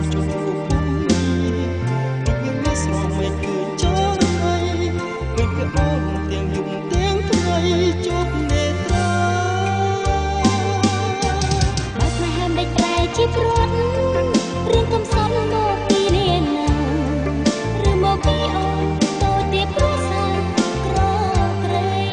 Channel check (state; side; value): identical; both; correlation 1.00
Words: ជុំពុំរូបយើងមានស្រស់មិនឃើញចោលហើយឃើញតែអូនទាំងយប់ទាំងថ្ងៃជប់នេត្រាបើស្នេហាមិនប្រែជាព្រាត់រឿងកំសត់មកពីនាណាឬមកពីអូនតូចទៀតព្រោះសាក្រក្រៃ